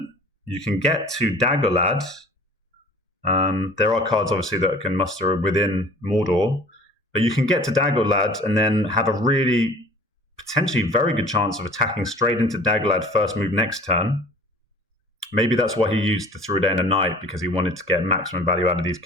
you can get to Daggerlad. There are cards, obviously, that can muster within Mordor, but you can get to Daggerlad and then have a really potentially very good chance of attacking straight into Daggerlad first move next turn. Maybe that's why he used the Through a Day and a Night, because he wanted to get maximum value out of these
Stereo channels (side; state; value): both; normal; correlation 0.46